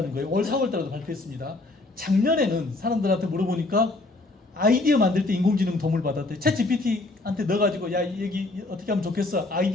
거예요. 올 4월달에도 발표했습니다. 작년에는 사람들한테 물어보니까 아이디어 만들 때 인공지능 도움을 받았대요. 챗 GPT한테 넣어가지고 야, 여기 어떻게 하면 좋겠어?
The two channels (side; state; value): right; quieter; 3.0 dB